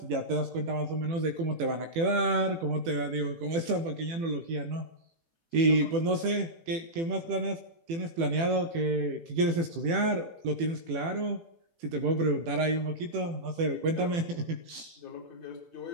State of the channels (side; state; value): left; late; 18 ms